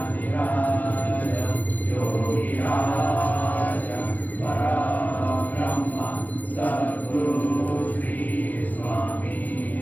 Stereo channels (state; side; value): late; right; 0.082 ms